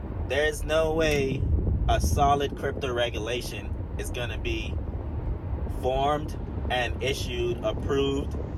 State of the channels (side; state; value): both; identical; correlation 1.00